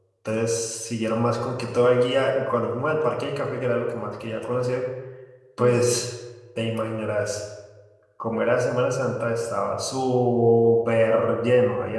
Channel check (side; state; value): both; identical; correlation 1.00